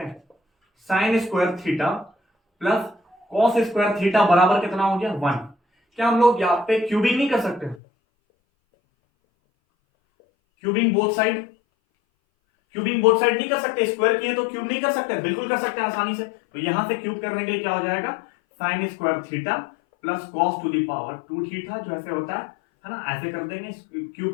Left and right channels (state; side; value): drops out; right; at 7.8 s